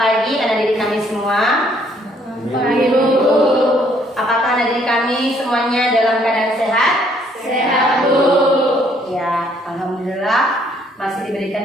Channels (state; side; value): normal; both; correlation 0.65